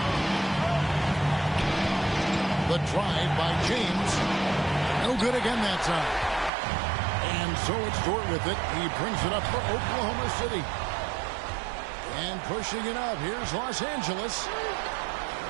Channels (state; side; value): drops out; left; at 6.5 s